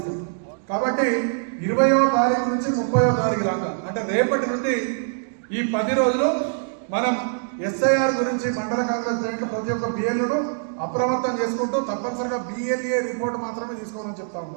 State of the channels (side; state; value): left; silent; digital silence